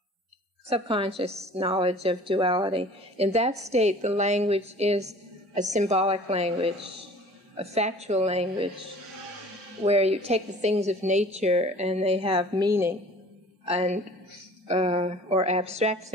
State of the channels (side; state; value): both; normal; correlation 0.47